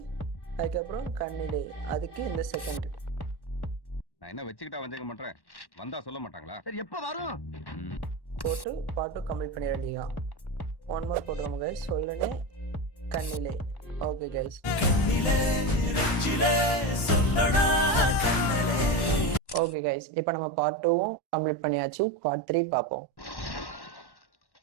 அதுக்கப்புறம் கண்ணிலே அதுக்கு இந்த செகண்ட் நான் என்ன வச்சுக்கிட்டா வஞ்சிக்க மாட்டேன், வந்தா சொல்ல மாட்டாங்களா? சரி எப்ப வரும்? போட்டு பாட்டு கம்ப்ளீட் பண்ணிட வேண்டியதான். 1 மோர் போட்டுருவோம் கைஸ். சொல்லனே கண்ணிலே. ஓகே கைஸ், ஓகே கைஸ், இப்போ நம்ம பார்ட் 2வும் கம்ப்ளீட் பண்ணியாச்சு. பார்ட் 3 பார்ப்போம்.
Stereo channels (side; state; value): right; late; 1.1 ms